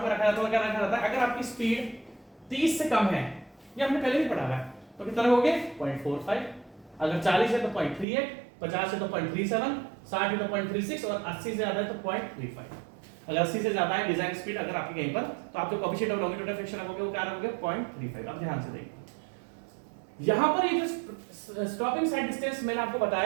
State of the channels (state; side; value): drops out; left; at 8.1 s